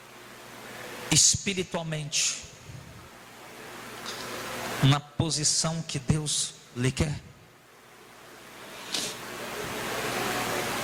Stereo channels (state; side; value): identical; both; correlation 1.00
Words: espiritualmente na posição que Deus lhe quer?